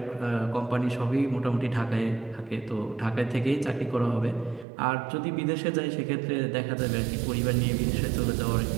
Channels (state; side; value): drops out; left; at 4.7 s